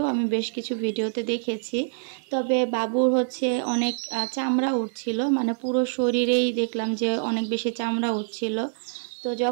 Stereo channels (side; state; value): left; silent; 61 dB below the other